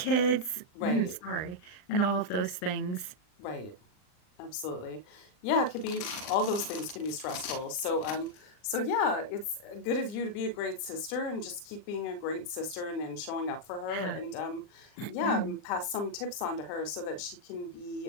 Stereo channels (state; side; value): late; right; 39 ms